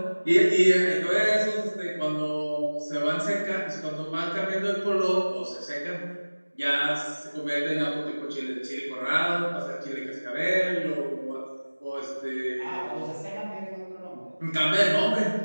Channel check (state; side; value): inverted; both; correlation -1.00